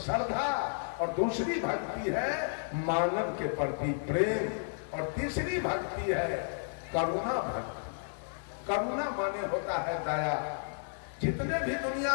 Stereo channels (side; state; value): right; silent; digital silence